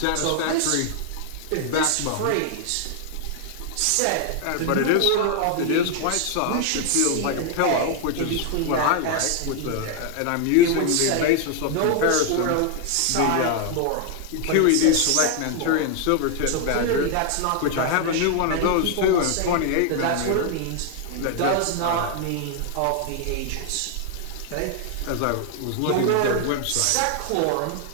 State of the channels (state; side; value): different; both; correlation 0.00